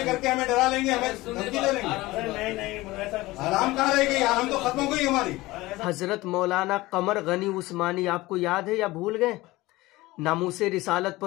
करके हमें डरा लेंगे, हमें धमकी दे लेंगे? आराम कहाँ रहेगी? आराम तो खत्म हो गई हमारी। हजरत मौलाना कमर गनी उस्मानी आपको याद है या भूल गए? नामूसे रिसालत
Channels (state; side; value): quieter; right; 19.4 dB